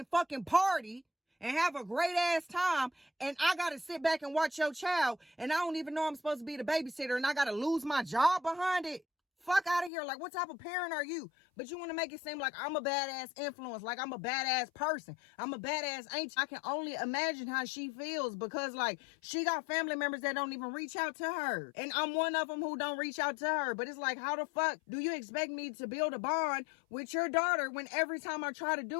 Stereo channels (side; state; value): right; drops out; at 9.9 s